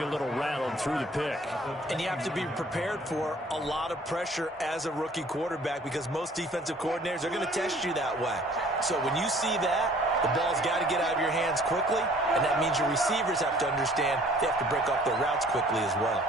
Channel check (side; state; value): both; normal; correlation 0.55